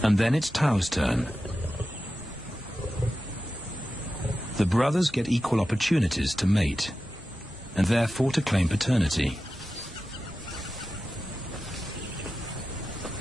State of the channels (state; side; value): normal; both; correlation 0.93